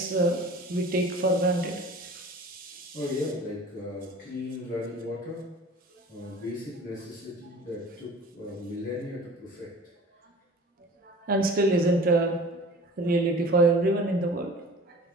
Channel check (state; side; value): normal; both; correlation 0.43